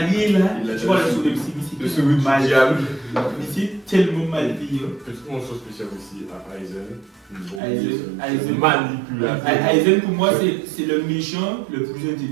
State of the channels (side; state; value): left; drops out; at 7.6 s